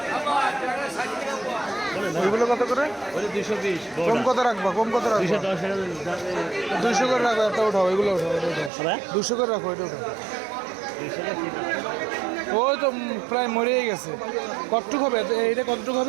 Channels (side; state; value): left; drops out; at 8.7 s